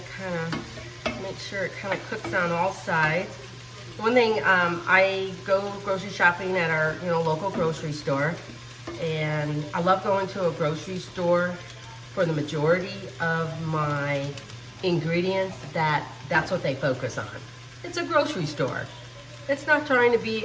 kind of make sure it kind of cooks on all sides. One thing, I go grocery shopping at our local grocery store, and I love going to a grocery store for the majority of my ingredients. That's what they focus on. It's a grocery store. It's not trying to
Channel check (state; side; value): identical; both; correlation 1.00